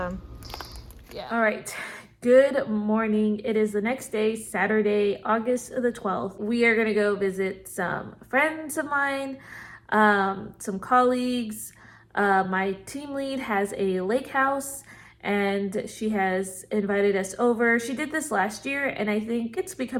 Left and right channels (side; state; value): both; identical; correlation 1.00